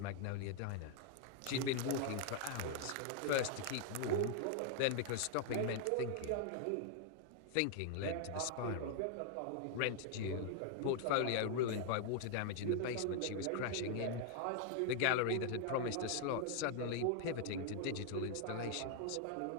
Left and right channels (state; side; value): different; both; correlation 0.00